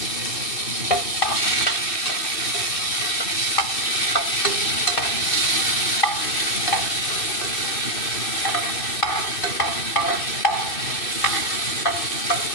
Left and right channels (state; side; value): late; right; 2.6 ms